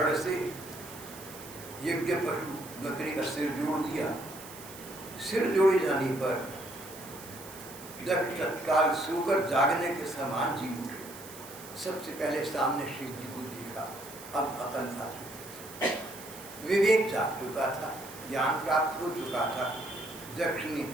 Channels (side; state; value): right; noise; hiss, 15 dB below the sound